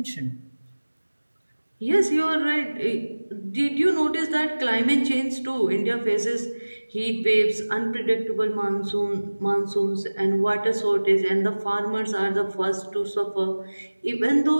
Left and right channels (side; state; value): both; inverted; correlation -1.00